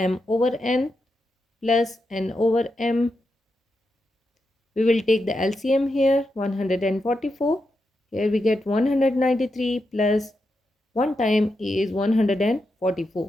over n plus n over m. We will take the LCM here, 144. Here we get 193 plus 1 time is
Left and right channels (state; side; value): normal; both; correlation 0.86